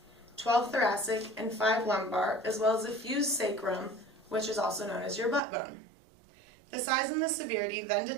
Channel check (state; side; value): drops out; left; at 5.4 s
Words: 12 thoracic, and 5 lumbar, as well as a fused sacrum, which is also known as your butt bone. The size and the severity then